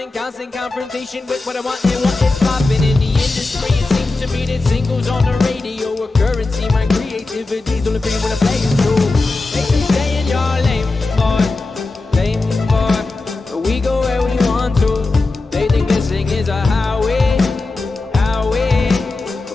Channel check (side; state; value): right; quieter; 3.4 dB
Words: constant confrontation with what I want and what is popping in the industry. It seems to me that singles on the radio are currency. My creativity's only free when I play it through. Make me stay in your lane, boy. Lane, boy. But we go where we want to. They think this thing is a highway. Highway.